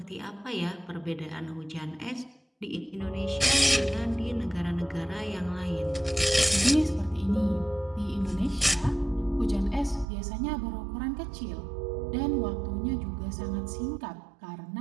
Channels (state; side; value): drops out; left; at 10.1 s